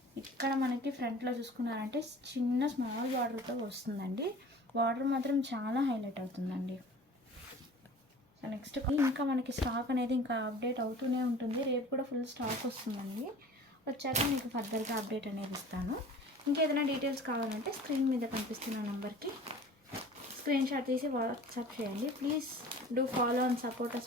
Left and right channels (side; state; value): both; normal; correlation 0.44